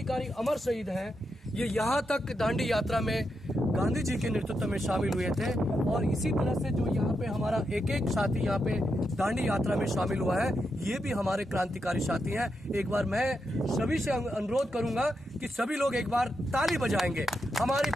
अमर शहीद हैं, ये यहाँ तक दांडी यात्रा में गांधी जी के नेतृत्व में शामिल हुए थे और इसी तरह से जो यहाँ पे हमारा एक एक साथी यहाँ पे दांडी यात्रा में शामिल हुआ है, ये भी हमारे क्रांतिकारी साथी हैं। एक बार मैं सभी से अनुरोध करूंगा कि सभी लोग एक बार ताली बजाएंगे हमारी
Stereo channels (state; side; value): normal; both; correlation 0.85